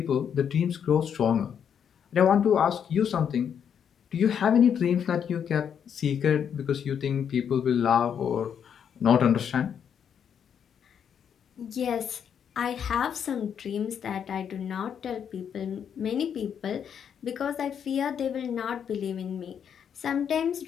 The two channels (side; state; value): right; quieter; 8.1 dB